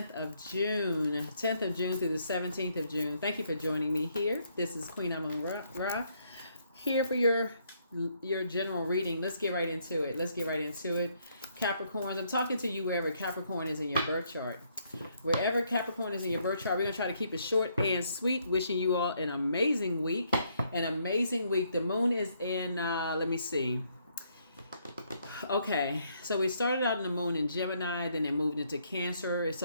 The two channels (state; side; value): inverted; both; correlation -0.71